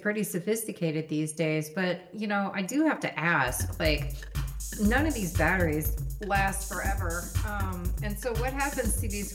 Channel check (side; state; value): both; identical; correlation 1.00